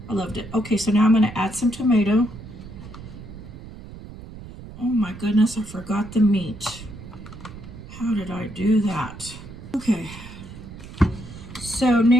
I loved it. Okay, so now I'm going to add some tomato. Oh my goodness, I forgot the meat. How did I do that? Okay, so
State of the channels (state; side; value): noise; right; rumble, 14 dB below the sound